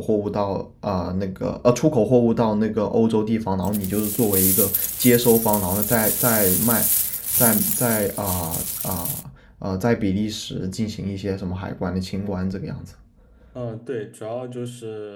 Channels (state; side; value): identical; both; correlation 1.00